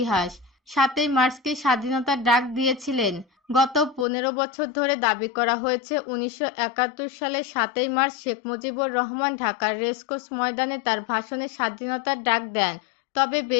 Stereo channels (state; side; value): drops out; right; at 4.0 s